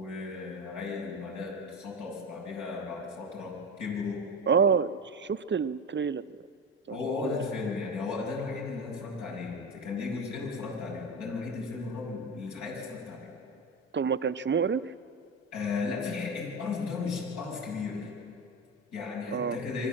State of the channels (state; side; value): normal; both; correlation 0.21